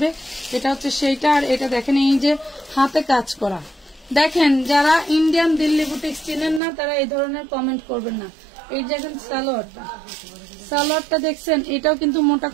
এটা হচ্ছে সেইটা। আর এটা দেখেন এই যে হাতে কাজ করা, দেখেন যারা ইন্ডিয়ান দিল্লি বুটিক্স চিনেন না তারা এই ধরনের কমেন্ট করবেন না। এই দেখেন সালোয়ারটা দেখছেন, এটাও কিন্তু মোটা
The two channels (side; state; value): left; drops out; at 6.6 s